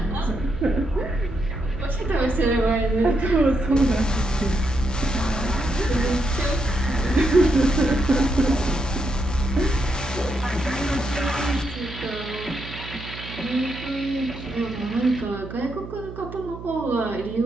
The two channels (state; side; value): noise; right; hum, 12 dB below the sound